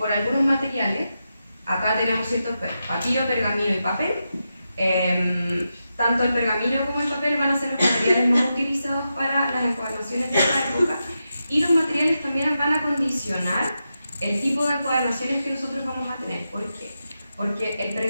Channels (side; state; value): both; inverted; correlation -0.88